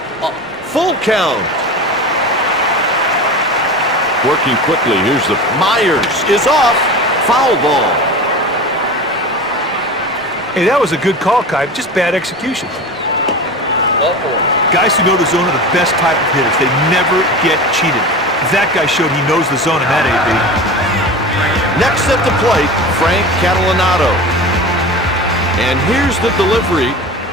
Full count. Working quickly. Here's the Myers is off. Foul ball. Hey, that was a good call, Kite. Just bad execution. Ball 4. Guys who know the zone are the best type of hitters. They never get cheated. That guy showed he knows the zone in that AB. Next at the plate, Frank Catalanato. And here's the delivery.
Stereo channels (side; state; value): both; normal; correlation 0.31